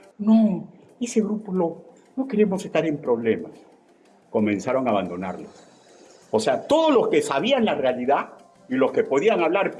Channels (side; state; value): both; identical; correlation 1.00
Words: No, ese grupo no queremos estar en problemas. Comenzaron a abandonarlos. O sea, todos los que sabían la realidad y los que podían hablar